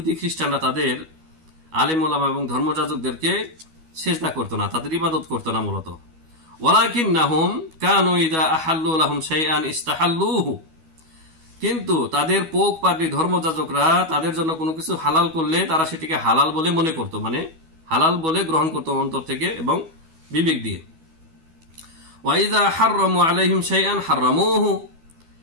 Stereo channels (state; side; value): late; left; 12 ms